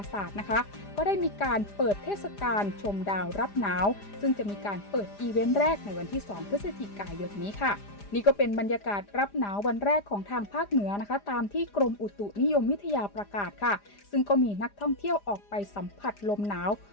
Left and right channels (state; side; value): late; right; 4.9 ms